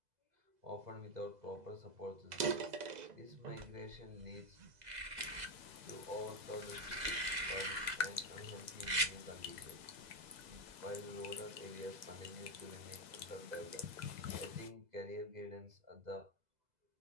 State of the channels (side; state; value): left; late; 2.0 ms